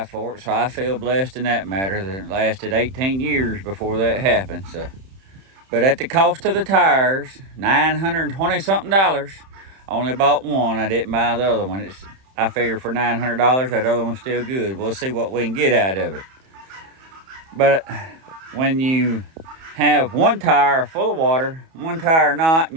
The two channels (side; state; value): left; late; 31 ms